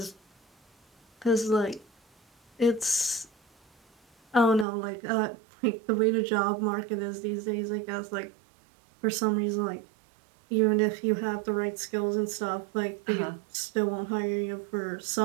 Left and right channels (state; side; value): drops out; left; at 4.7 s